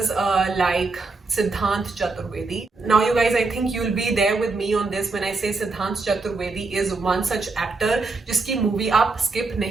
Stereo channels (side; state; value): left; quieter; 3.8 dB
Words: like Siddhant Chaturvedi. Now you guys, I think you'll be there with me on this when I say Siddhant Chaturvedi is one such actor जिसकी movie आप skip